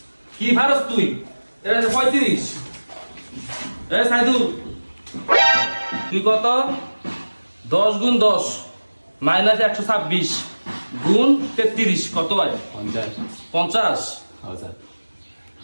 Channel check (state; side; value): inverted; both; correlation -1.00